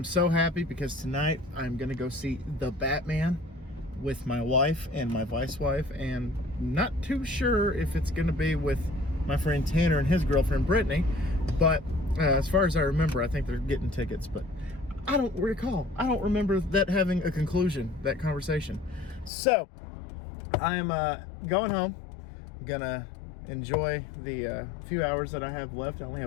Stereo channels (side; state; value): right; drops out; at 19.3 s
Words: so happy because tonight I'm going to go see The Batman with my wife and my vice wife, and not too sure if it's going to be with my friend Tanner and his girlfriend Brittany, but as far as I remember, I think they're getting tickets, but I don't recall. I don't remember that having a conclusion, that conversation. So I'm going home. I'm gonna enjoy the few hours that I have left. I only